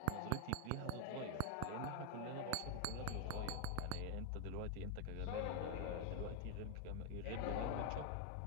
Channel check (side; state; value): both; different; correlation 0.01